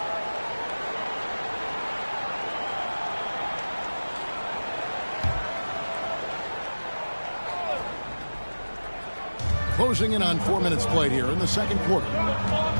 Closing in on 4 minutes played here in the second quarter.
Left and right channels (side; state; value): both; inverted; correlation -1.00